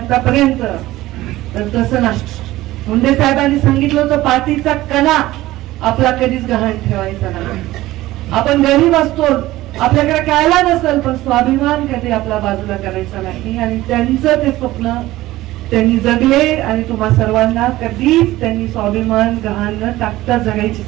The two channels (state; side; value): quieter; left; 16.8 dB